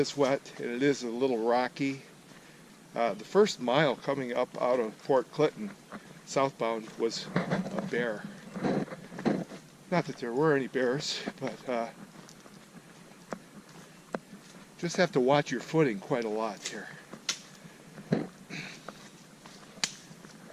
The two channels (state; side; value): identical; both; correlation 1.00